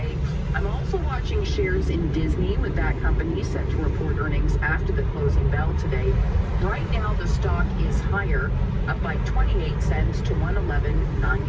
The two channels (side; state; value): both; identical; correlation 1.00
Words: I'm also watching shares in Disney, with that company set to report earnings after the closing bell today. Right now, the stock is higher, up by 28 cents to